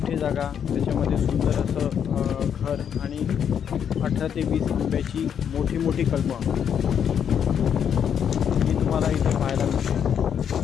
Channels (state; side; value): quieter; right; 8.3 dB